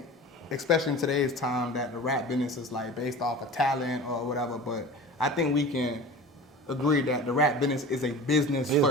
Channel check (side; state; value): both; normal; correlation 0.36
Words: especially in today's time, that the rap business is like based off of talent or whatever, but I think we can agree that the rap business is a business